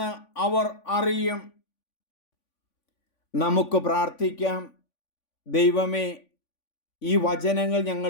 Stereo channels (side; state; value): right; late; 3.5 ms